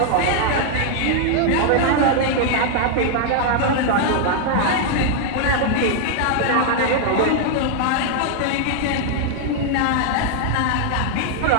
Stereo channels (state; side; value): different; both; correlation 0.00